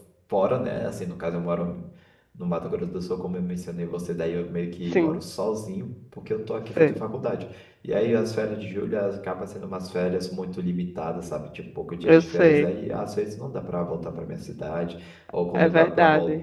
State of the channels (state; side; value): identical; both; correlation 1.00